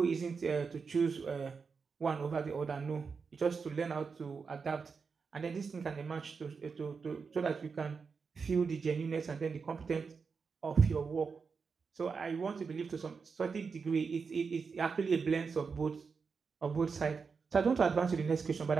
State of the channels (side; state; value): left; quieter; 5.3 dB